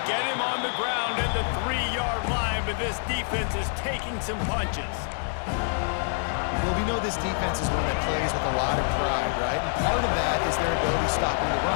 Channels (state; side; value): silent; right; 61 dB below the other